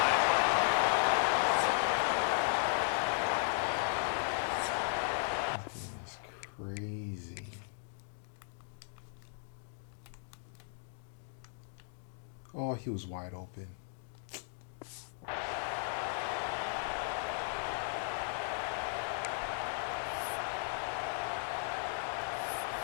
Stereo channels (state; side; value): silent; right; digital silence